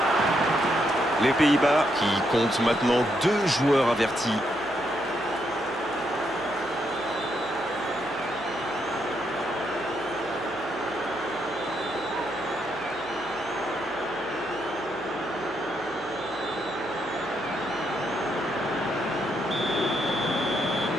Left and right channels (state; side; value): noise; right; hum, 25 dB below the sound